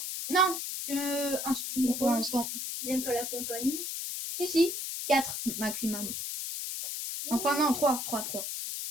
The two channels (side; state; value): left; noise; hiss, 4 dB below the sound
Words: Non, pour l'instant. J'aime pas la compagnie. Si, 4 maximum. Enfin, non, 3.